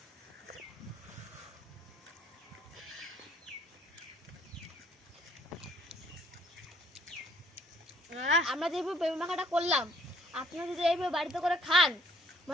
আমরা যেভাবে পেঁপে মাখাটা করলাম, আপনারা যদি এইভাবে বাড়িতে করে খান,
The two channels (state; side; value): normal; both; correlation 0.62